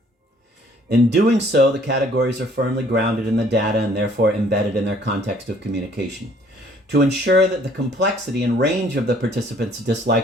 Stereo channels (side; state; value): both; normal; correlation 0.59